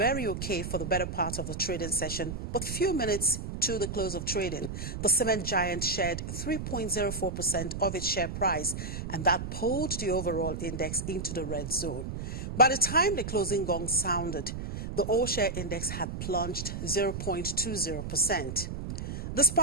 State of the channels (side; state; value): right; noise; rumble, 6 dB below the sound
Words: okay for the better part of the trading session, but few minutes to the close of trading, the cement giant shared 3.04% of its share price, and that pulled the overall index into the red zone. By the time the closing gong sounded, the all-share index had plunged 0.20%.